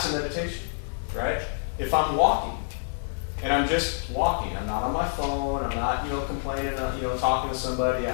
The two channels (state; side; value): silent; right; digital silence